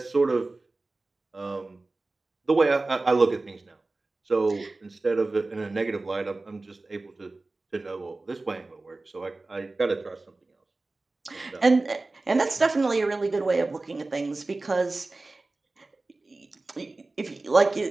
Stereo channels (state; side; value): quieter; left; 3.2 dB